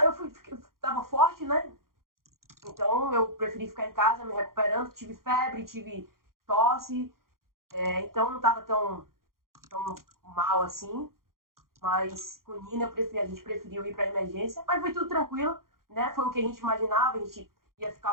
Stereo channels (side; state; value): left; late; 0.92 ms